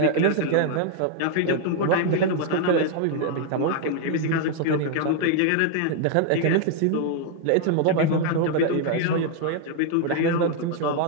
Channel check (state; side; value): different; both; correlation 0.00